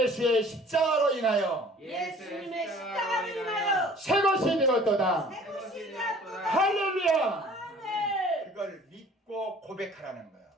십자가로 인하여 예수님의 십자가로 인하여 새 것이 되었도다. 새 것이 되었도다. 할렐루야. 아멘. 그걸 믿고 고백하라는 거예요.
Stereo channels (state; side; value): normal; both; correlation 0.50